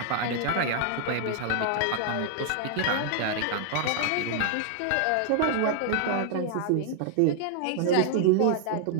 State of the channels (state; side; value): different; both; correlation 0.00